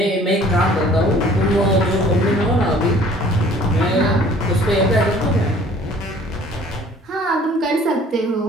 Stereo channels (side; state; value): both; normal; correlation 0.53